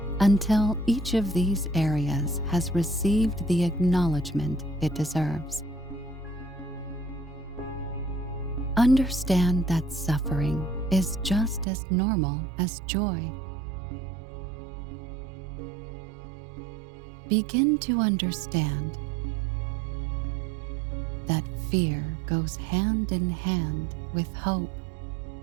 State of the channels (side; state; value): left; drops out; at 11.7 s